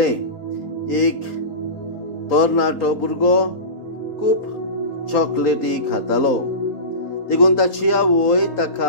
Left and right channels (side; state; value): right; late; 3.8 ms